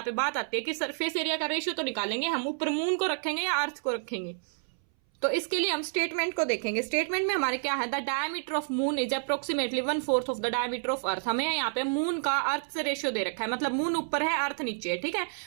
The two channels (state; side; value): silent; left; 58 dB below the other